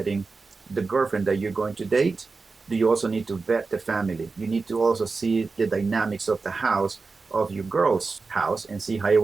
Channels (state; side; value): quieter; left; 4.2 dB